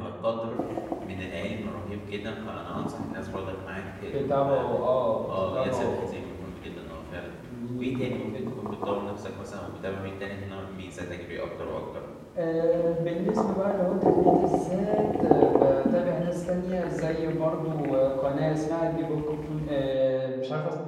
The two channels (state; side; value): identical; both; correlation 1.00